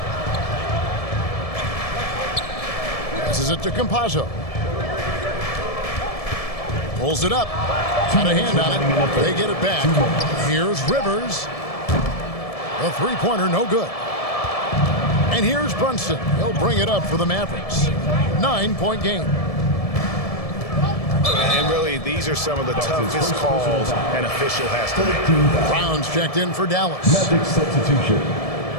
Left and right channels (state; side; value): late; right; 1.7 ms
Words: Passes it to Campazzo. Pulls it up. Got a hand on it. They get it back. Here's Rivers. A 3-pointer, no good. And here's Brunson. He'll bring it up for the Mavericks. 9-point game. And really, these are some of the toughest calls an official has to make. Brown's checked in for Dallas. Magic substitution.